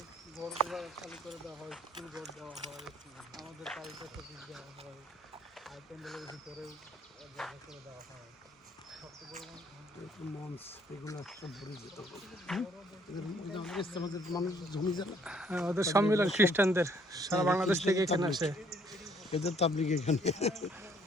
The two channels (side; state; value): both; normal; correlation 0.63